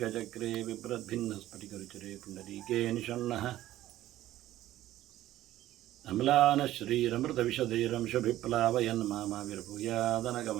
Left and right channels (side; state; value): left; quieter; 14.3 dB